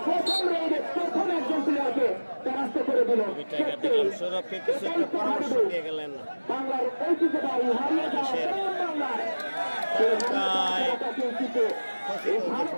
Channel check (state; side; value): inverted; both; correlation -1.00